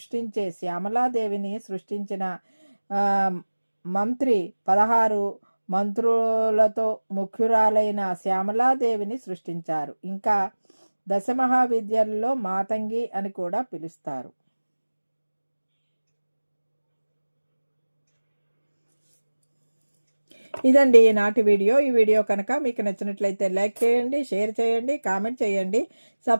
శ్యామలాదేవిని సృష్టించిన మంత్రి 16 మంత్రులతో ముఖ్యురాలైన శ్యామలాదేవిని సృష్టించారు. ఇంకా దశమహావిద్యల్లో మాతంగి అని కూడా పిలుస్తారు. ఇదండి ఈనాటి వీడియో. ఈ వీడియో కనుక మీకు నచ్చినట్లయితే లైక్ చేయండి, షేర్ చేయండి, కామెంట్ చేయండి,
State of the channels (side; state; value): both; inverted; correlation -1.00